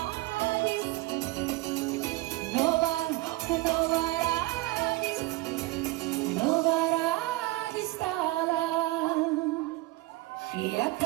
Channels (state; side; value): quieter; left; 19.9 dB